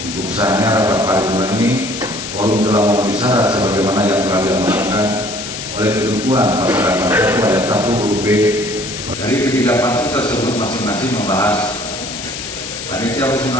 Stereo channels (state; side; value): noise; left; hiss, 8 dB below the sound